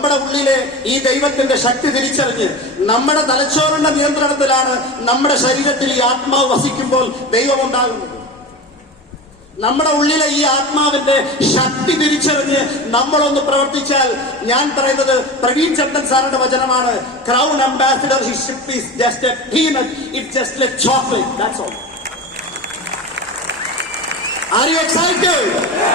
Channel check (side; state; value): both; normal; correlation 0.28